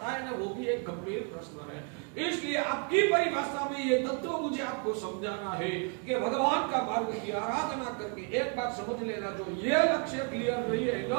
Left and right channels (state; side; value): quieter; left; 37.9 dB